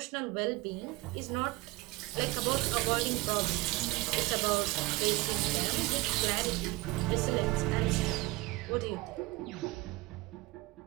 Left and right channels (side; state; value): left; quieter; 21.6 dB